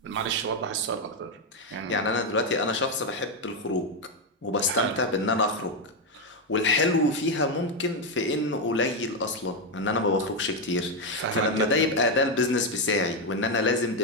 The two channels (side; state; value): both; normal; correlation 0.05